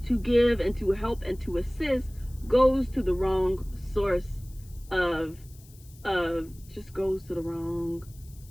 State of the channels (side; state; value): left; noise; hiss, 25 dB below the sound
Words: to give and to help and to assist goes to the wrong source just goes to the wrong